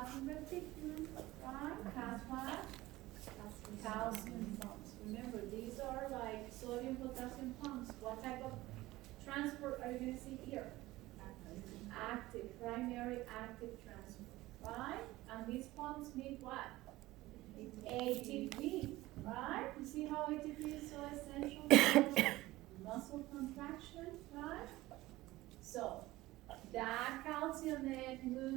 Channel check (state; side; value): quieter; left; 18.1 dB